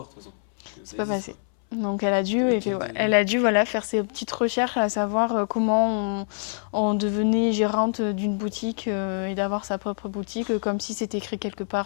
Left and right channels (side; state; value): right; silent; 62 dB below the other